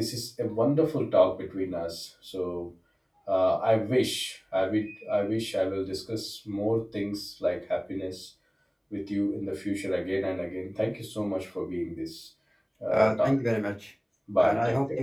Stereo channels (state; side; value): identical; both; correlation 1.00